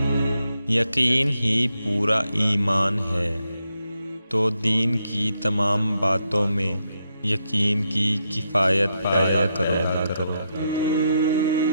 یقین ہی پورا ایمان ہے، تو دین کی تمام باتوں میں یقین کی کفایت پیدا کرو۔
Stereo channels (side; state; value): both; inverted; correlation -0.81